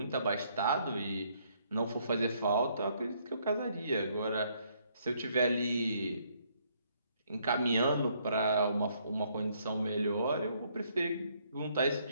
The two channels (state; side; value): inverted; both; correlation -0.69